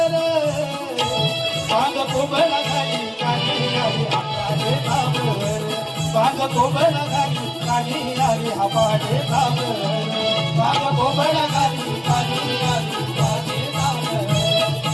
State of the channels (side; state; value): both; identical; correlation 1.00